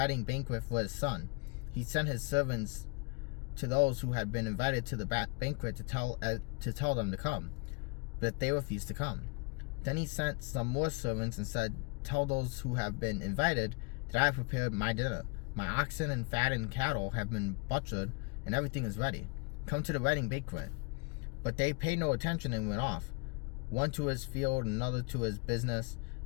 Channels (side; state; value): right; quieter; 31.8 dB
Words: banquet for his son. He sent his servants to those who had been invited to the banquet to tell them to come, but they refused to come. Then he sent some more servants and said, 'Tell those who have been invited that I have prepared my dinner. My oxen and fattened cattle have been butchered, and everything is ready. Come to the wedding banquet.' But they paid no attention and went off, one to his field, another to his business.